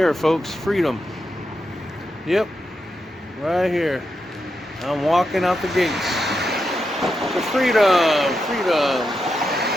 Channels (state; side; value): normal; both; correlation 0.86